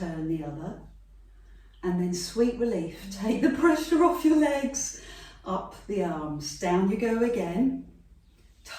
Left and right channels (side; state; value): both; identical; correlation 1.00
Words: the other, and then sweet relief. Take the pressure off your legs, up the arms, down you go again.